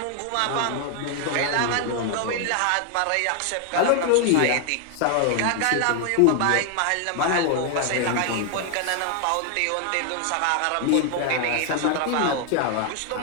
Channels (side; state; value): both; different; correlation 0.00